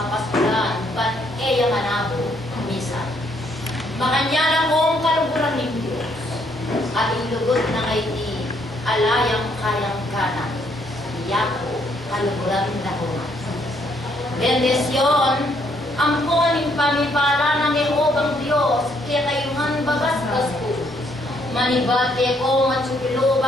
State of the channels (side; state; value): both; normal; correlation 0.70